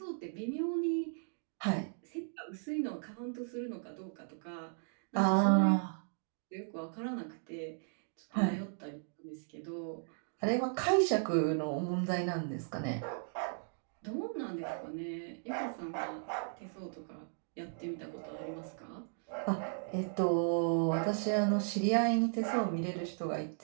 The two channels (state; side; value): silent; left; digital silence